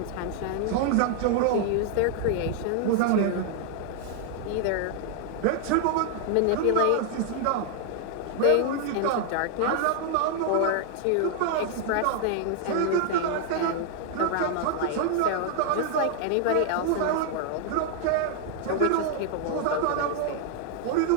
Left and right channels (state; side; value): different; both; correlation 0.00